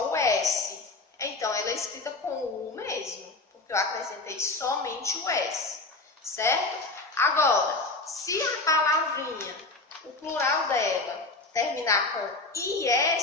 o S. Então, ela é escrita com U mesmo, porque eu acrescentei somente o S, certo? Agora, se a palavrinha, o plural dela, terminar com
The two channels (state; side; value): quieter; right; 3.4 dB